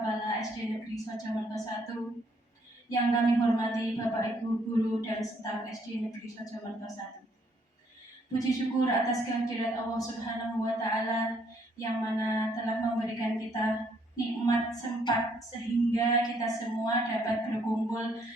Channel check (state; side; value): normal; both; correlation 0.68